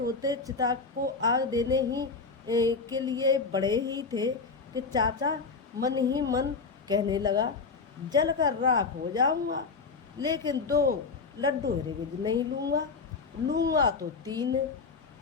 चिता को आग देने ही के लिए बड़े ही थे कि चाचा मन ही मन कहने लगा, जल कर राख हो जाऊंगा, लेकिन 2 लड्डू हरगिज नहीं लूँगा। लूँगा तो 3,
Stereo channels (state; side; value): quieter; right; 4.6 dB